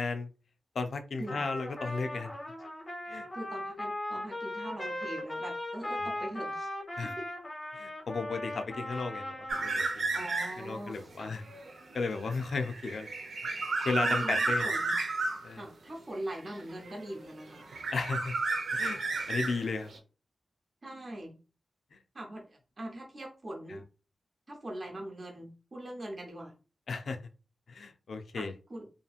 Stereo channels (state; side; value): normal; both; correlation 0.87